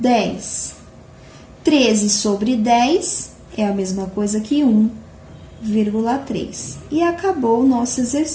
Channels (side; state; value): both; identical; correlation 1.00